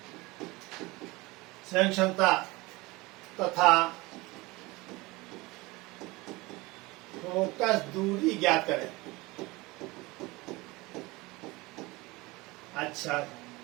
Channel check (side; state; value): left; quieter; 22.4 dB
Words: संयुक्त क्षमता तथा फोकस दूरी ज्ञात करें। अच्छा,